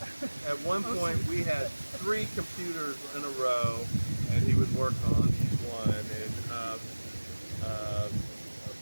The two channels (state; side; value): inverted; both; correlation -1.00